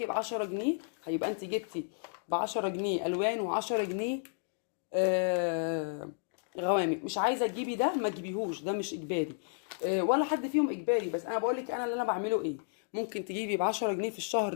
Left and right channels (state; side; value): silent; right; digital silence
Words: ب 10 جنيه. هيبقى انت جبتي ب 10 جنيه الوان و10 جنيه آه غوامق. مش عايزه تجيبي ده ما تجيبيهوش، ده مش اجباري ولا حد فيهم اجباري، بس انا بقول لك انا اللي انا بعمله ايه. ممكن تجيبي ب 10 جنيه في